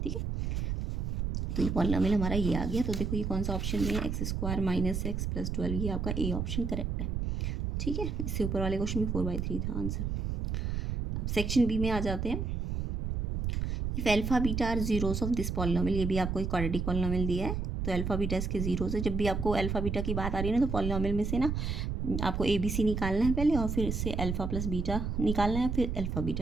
ठीक है। तो ये पॉलिनॉमियल हमारा ये आ गया। तो देखो ये कौन सा ऑप्शन में है, x square minus x plus 12, ये आपका ए ऑप्शन करेक्ट है, ठीक है। इससे ऊपर वाले क्वेश्चन में 4/3 था आंसर। अब सेक्शन बी में आ जाते हैं। If alpha beta are zeros of this polynomial, ये भी आपको एक क्वाड्रेटिक पॉलिनॉमियल दिया है तो अल्फा बीटा इसके जीरोस है। जब भी आपको अल्फा बीटा की बात आ रही है ना तो पॉलिनॉमियल में से ना आपको ABC निकालना है पहले और फिर इससे अल्फा प्लस बीटा निकालना है, फिर अल्फा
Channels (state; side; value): noise; right; rumble, 2 dB below the sound